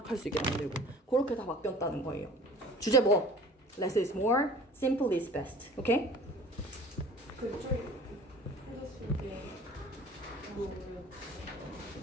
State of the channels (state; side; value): normal; both; correlation 0.45